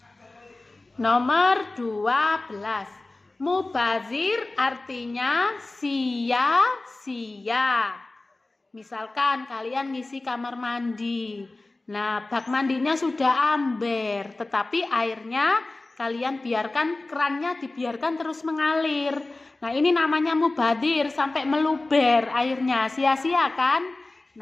Nomor 12. Mubazir artinya sia-sia. Misalkan kalian ngisi kamar mandi. Nah, bak mandinya sudah amber, tetapi airnya kalian biarkan, kerannya dibiarkan terus mengalir. Nah, ini namanya mubazir, sampai meluber airnya, sia-sia kan?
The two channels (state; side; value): quieter; right; 3.0 dB